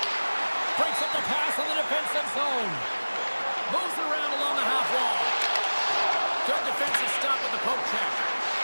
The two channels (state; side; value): inverted; both; correlation -1.00